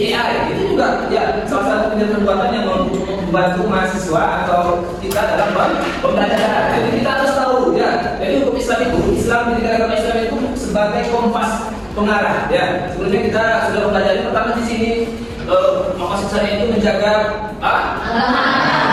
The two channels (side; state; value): both; identical; correlation 1.00